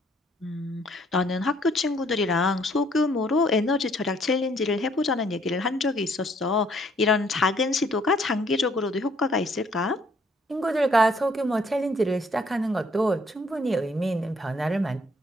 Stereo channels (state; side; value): normal; both; correlation 0.64